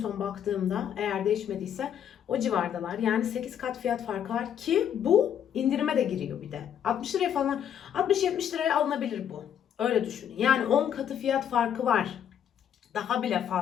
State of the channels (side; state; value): right; quieter; 9.2 dB